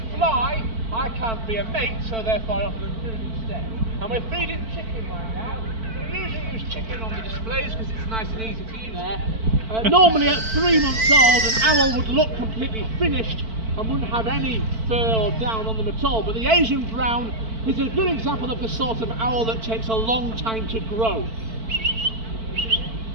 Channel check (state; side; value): late; left; 4.5 ms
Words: fly, I can't be a mate, so therefore I offer them food instead. And we're feeding chicken right now. We usually use chicken on the displays because it's nice and easy to use there. Normally at 3 months old, an owl would look completely finished and wouldn't have any fur or down on them at all. But the Asian brown is a good example of the sort of owl that takes a long time to grow.